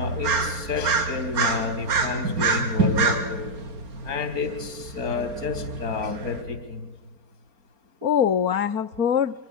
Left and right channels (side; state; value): left; late; 4.3 ms